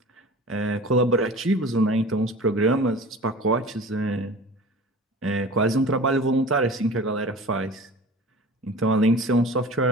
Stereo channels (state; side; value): normal; both; correlation 0.39